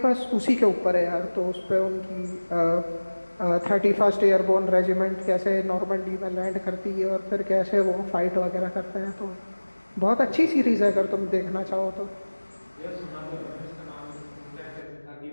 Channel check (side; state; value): both; inverted; correlation -1.00